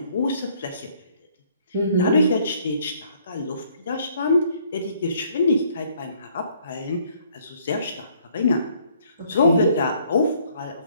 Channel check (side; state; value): both; inverted; correlation -0.63